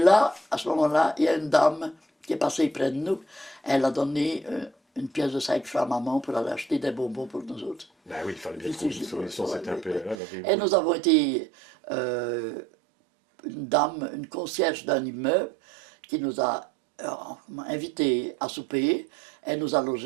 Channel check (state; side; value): drops out; left; at 10.2 s